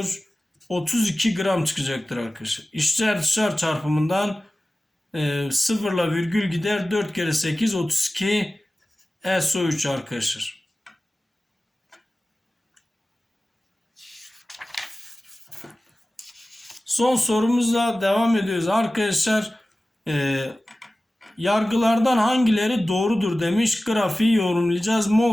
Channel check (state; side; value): normal; both; correlation 0.96